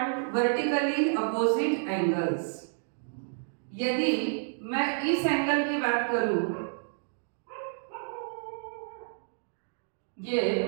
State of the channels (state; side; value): silent; left; digital silence